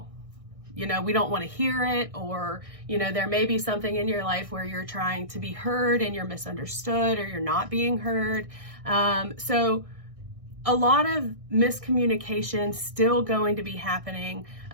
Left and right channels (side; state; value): left; late; 1.6 ms